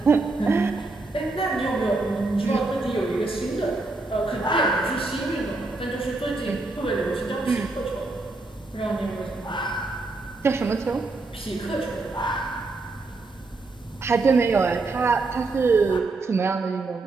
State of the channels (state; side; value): quieter; left; 3.4 dB